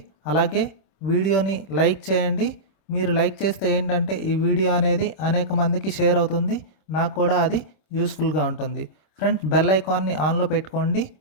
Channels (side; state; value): right; late; 26 ms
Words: అలాగే వీడియోని లైక్ చేయండి. మీరు లైక్ చేస్తే ఏంటంటే ఈ వీడియో అనేది అనేక మందికి షేర్ అవుతుంది, నాకు కూడా అది యూస్ఫుల్గా ఉంటుంది. ఫ్రెండ్స్, బెల్ ఐకాన్ని ఆన్లో పెట్టుకోండి,